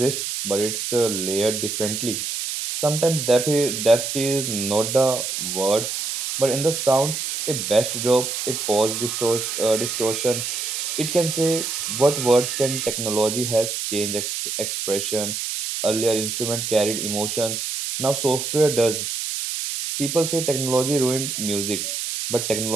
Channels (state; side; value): noise; right; hiss, 3 dB below the sound